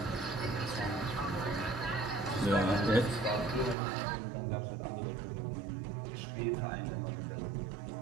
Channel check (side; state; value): left; drops out; at 3.8 s